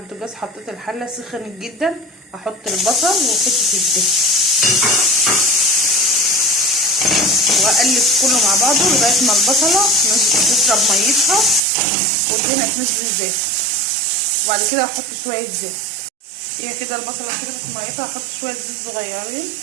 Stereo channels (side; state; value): left; drops out; at 11.6 s